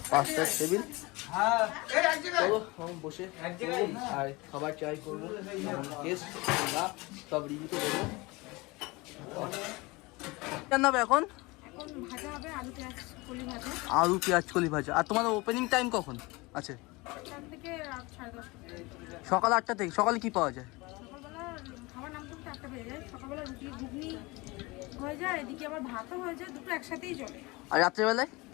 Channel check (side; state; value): right; quieter; 23.8 dB